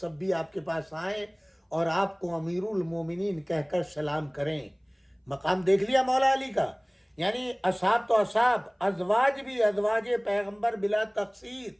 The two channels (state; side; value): identical; both; correlation 1.00